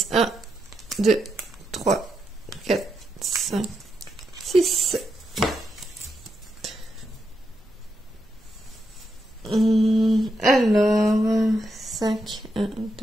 1, 2, 3, 4, 5, 6. Alors, 5, 1,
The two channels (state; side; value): normal; both; correlation 0.83